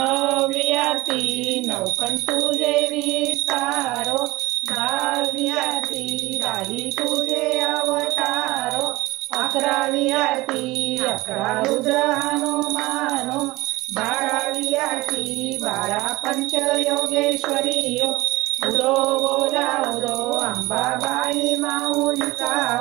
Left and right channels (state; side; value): quieter; left; 20.1 dB